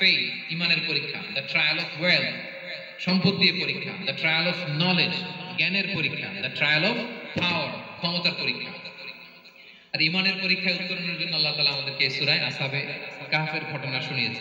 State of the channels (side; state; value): both; identical; correlation 1.00